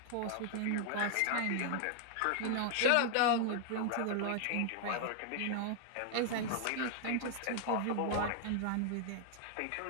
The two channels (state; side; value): different; both; correlation 0.00